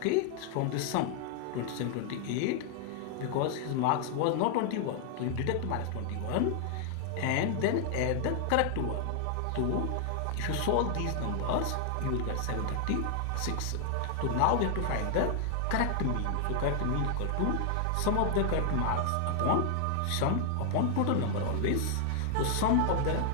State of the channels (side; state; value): both; different; correlation 0.00